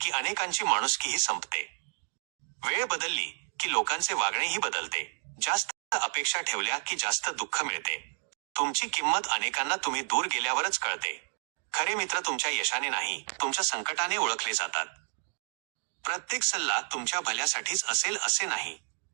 अनेकांची माणुसकीही संपते. वेळ बदलली की लोकांचे वागणेही बदलते. जास्त अपेक्षा ठेवल्या की जास्त दुःख मिळते. तुमची किंमत अनेकांना तुम्ही दूर गेल्यावरच कळते. खरे मित्र तुमच्या यशाने नाही, तुमच्या संकटाने ओळखले जातात. प्रत्येक सल्ला तुमच्या भल्यासाठीच असेल असे नाही.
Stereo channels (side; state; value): left; silent; 57 dB below the other